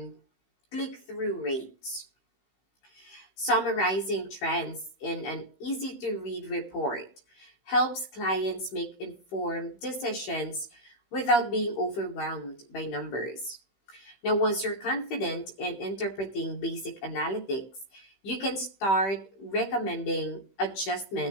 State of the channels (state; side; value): late; right; 15 ms